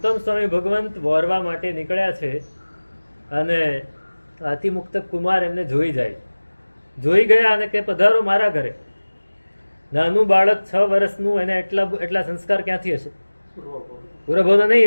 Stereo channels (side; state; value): both; inverted; correlation -1.00